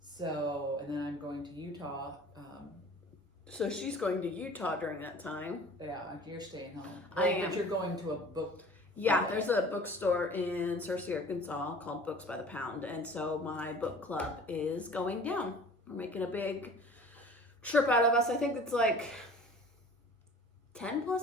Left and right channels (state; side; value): normal; both; correlation 0.45